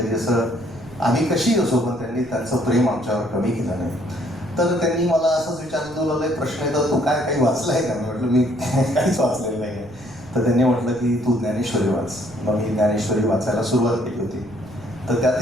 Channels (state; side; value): noise; right; rumble, 21 dB below the sound